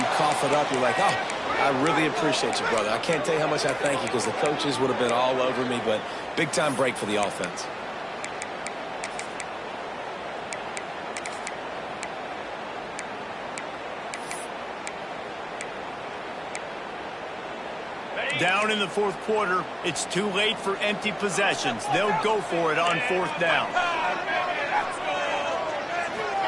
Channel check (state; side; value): identical; both; correlation 1.00